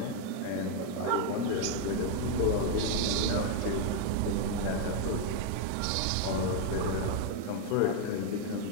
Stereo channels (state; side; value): different; both; correlation 0.00